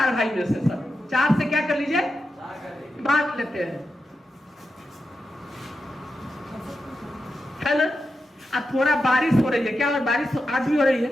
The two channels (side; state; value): both; normal; correlation 0.88